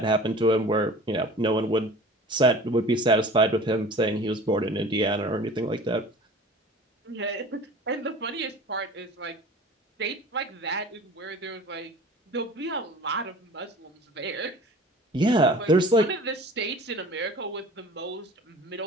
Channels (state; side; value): normal; both; correlation 0.42